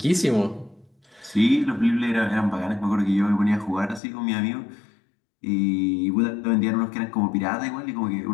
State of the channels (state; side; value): drops out; right; at 4.0 s